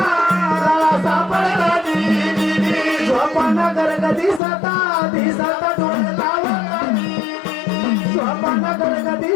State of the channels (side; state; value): right; drops out; at 4.4 s